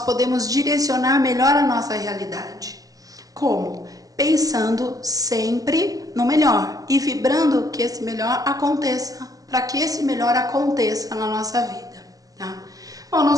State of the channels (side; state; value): left; late; 0.17 ms